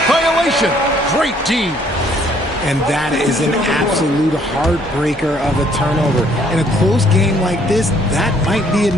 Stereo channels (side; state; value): both; normal; correlation 0.63